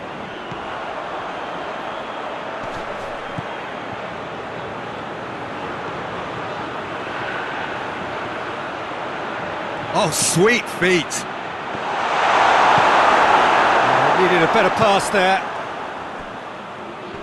Oh, sweet feet. Needed a better pass there.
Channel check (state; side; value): identical; both; correlation 1.00